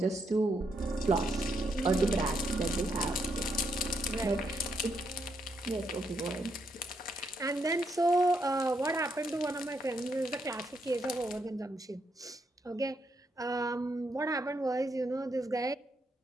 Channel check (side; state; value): both; normal; correlation 0.78